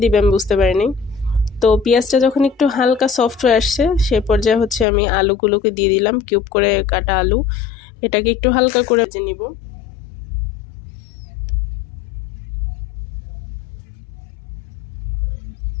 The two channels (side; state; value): right; drops out; at 4.9 s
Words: দিবে আমি বুঝতে পারিনি। তো পেঁয়াজটা যখন একটু হালকা সফট হয়ে আসছে, সে পর্যায়ে আমি আলুগুলোকে দিয়ে দিলাম, কিউব করে কাটা আলু। এটাকে একটু হালকা করে ভেজে নিব।